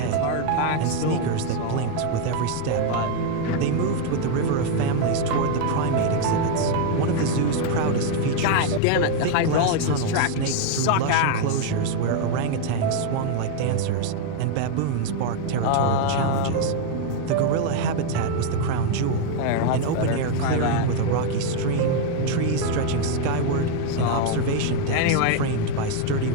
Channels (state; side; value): different; both; correlation 0.01